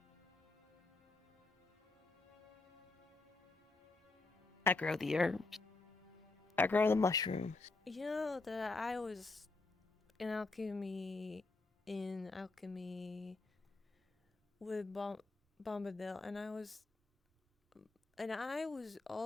I grow the herbs. I grow the mushrooms. You know that I was in alchemy with Bombadil, and I was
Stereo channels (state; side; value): quieter; right; 3.5 dB